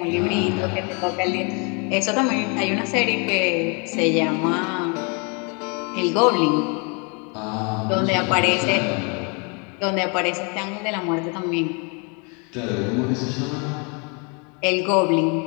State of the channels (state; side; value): quieter; right; 33.8 dB